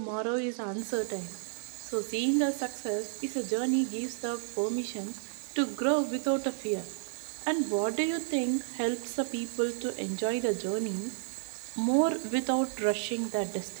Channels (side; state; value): left; silent; digital silence